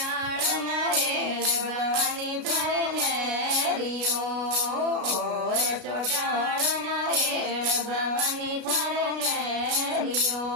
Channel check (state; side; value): late; left; 33 ms